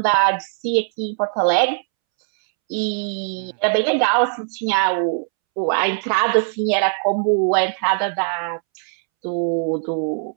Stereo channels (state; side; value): silent; left; 65 dB below the other